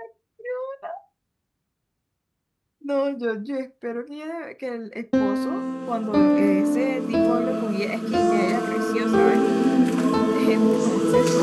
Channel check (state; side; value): identical; both; correlation 1.00